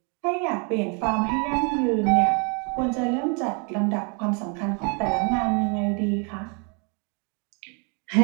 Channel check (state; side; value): quieter; left; 35.8 dB